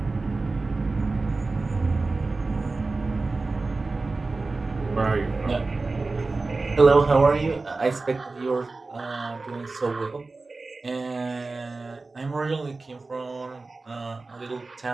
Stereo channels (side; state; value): left; quieter; 3.6 dB